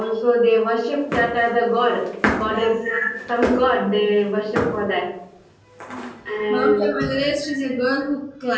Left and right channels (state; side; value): identical; both; correlation 1.00